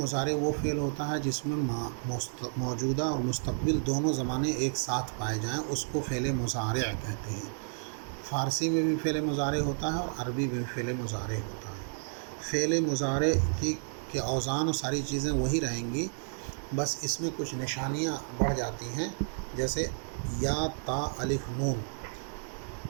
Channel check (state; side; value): silent; left; digital silence